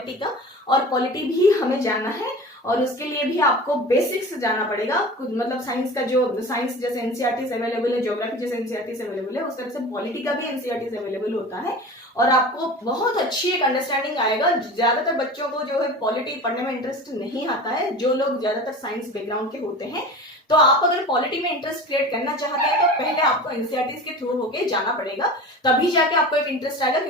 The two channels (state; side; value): normal; both; correlation 0.35